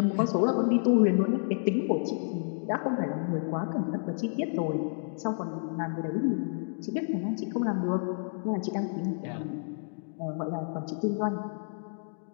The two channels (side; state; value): right; silent; digital silence